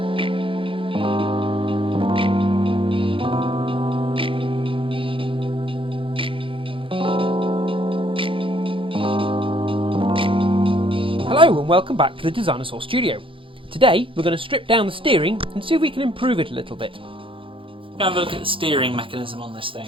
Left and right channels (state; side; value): late; left; 0.25 ms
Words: and welcome back to the Designasaw studio. Today we're going to strip down the steering and see if we can improve it a little bit. We're going to have a look at the steering mechanism on this